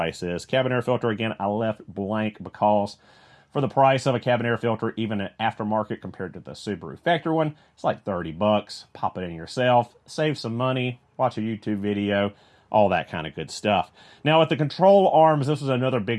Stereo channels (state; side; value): identical; both; correlation 1.00